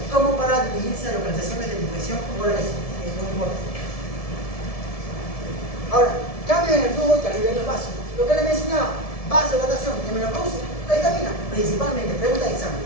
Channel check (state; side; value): late; right; 1.7 ms